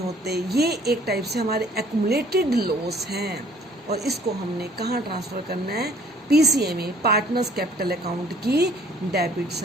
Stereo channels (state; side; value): normal; both; correlation 0.56